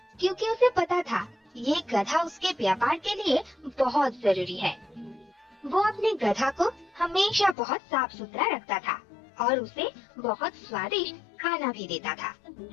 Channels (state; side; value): drops out; right; at 7.6 s